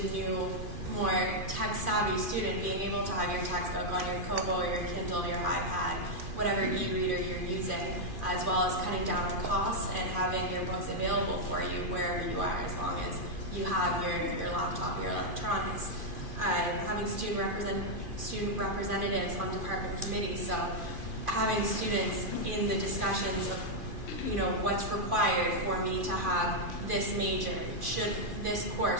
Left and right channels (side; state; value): left; late; 2.5 ms